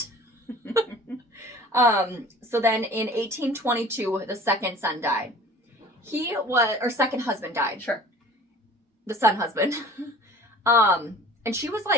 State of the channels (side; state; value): both; normal; correlation 0.45